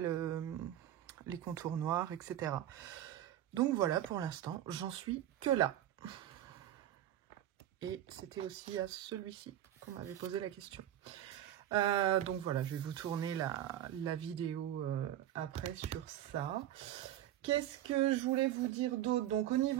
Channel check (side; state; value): left; quieter; 12.1 dB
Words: contours noirs, etc. Donc, voilà, pour l'instant, j'en suis que là. Et c'était aussi à celui-ci qu'on m'avait posé la question. Donc voilà, je vais vous tourner la vidéo après sur ça. Qu'est-ce que je voulais vous dire d'autre? Donc au